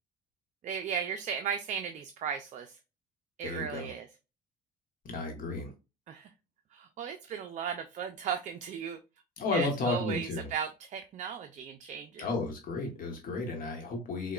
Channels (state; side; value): normal; both; correlation 0.18